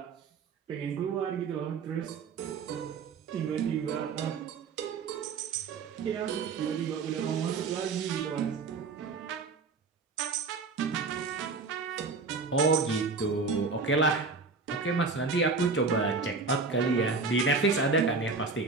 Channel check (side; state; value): left; quieter; 4.4 dB